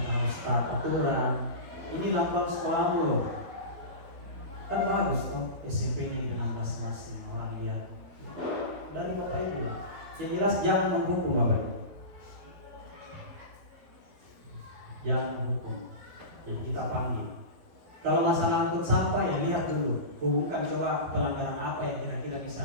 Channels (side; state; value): left; late; 12 ms